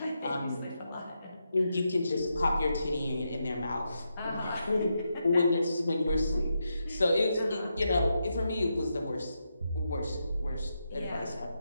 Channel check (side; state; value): both; inverted; correlation -0.84